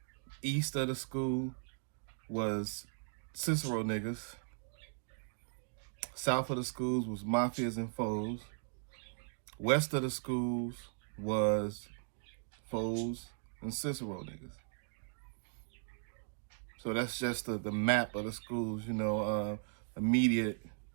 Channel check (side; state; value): left; silent; digital silence